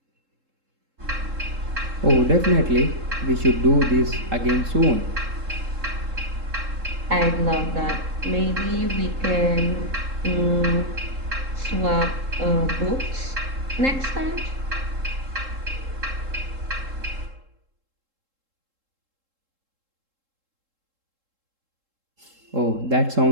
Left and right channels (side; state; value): left; late; 3.7 ms